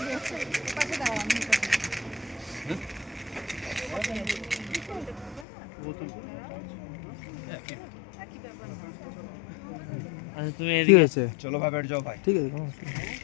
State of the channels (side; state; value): right; drops out; at 5.5 s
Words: ঠিক আছে চলো ভাই बैठ जाओ भाई ঠিক আছে কোনো অসুবিধা নেই।